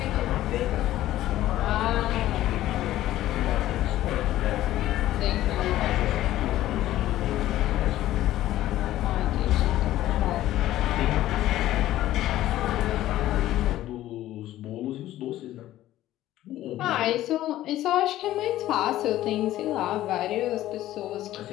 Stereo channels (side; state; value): right; quieter; 14.2 dB